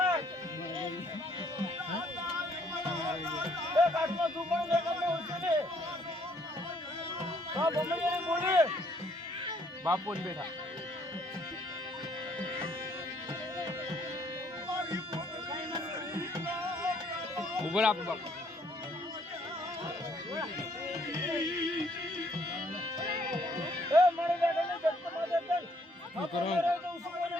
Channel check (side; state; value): both; normal; correlation 0.66